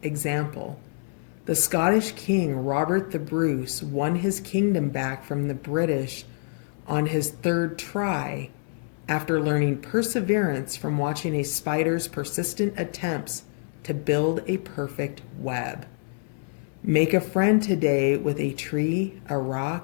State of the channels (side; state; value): right; silent; 61 dB below the other